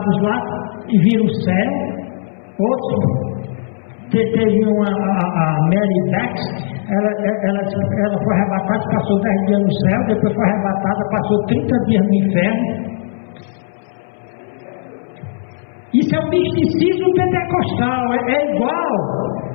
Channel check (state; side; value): silent; right; 64 dB below the other